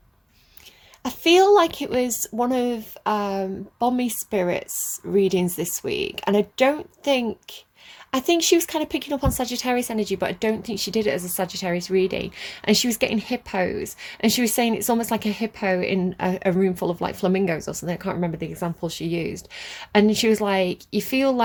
I feel like it was one of Bommy Spirit's readings this week, and I think she was kind of picking up on Sagittarius energy, but I don't think she did it as a Sagittarius reading. And she was getting hippos, and she was saying it's almost like a hippo in a room full of like flamingos or something. I can't remember the example she used. And she was like, you feel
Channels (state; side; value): identical; both; correlation 1.00